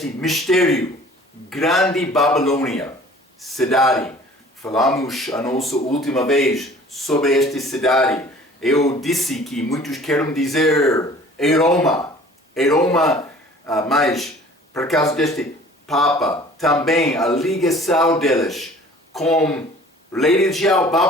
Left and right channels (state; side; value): normal; both; correlation 0.49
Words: mistério, Grande Babilônia, cidade. Falamos a nossa última vez sobre esta cidade. Eu disse que muitos querem dizer Roma, mas por causa deste Papa, também a ligação deles com a religião